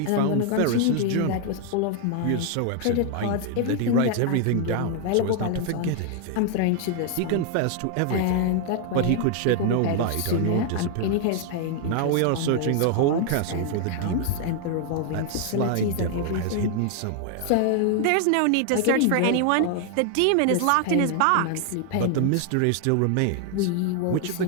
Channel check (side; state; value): both; different; correlation 0.00